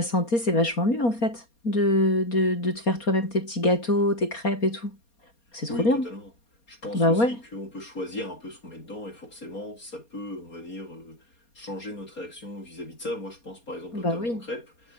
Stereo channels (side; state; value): right; late; 4.3 ms